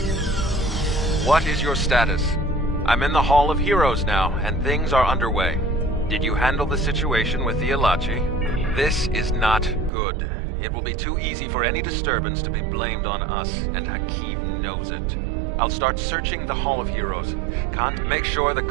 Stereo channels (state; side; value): drops out; left; at 9.9 s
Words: What is your status? I'm in the Hall of Heroes now, and things are underway. Did you handle the situation with the Elachi? This is not good. It will be too easy for any disturbance to be blamed on us, and Hakim knows it. I'll start searching the Hall of Heroes. Can't make sure the